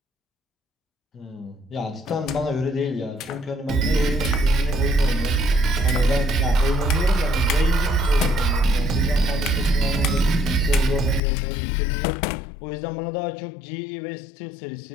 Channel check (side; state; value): right; drops out; at 11.2 s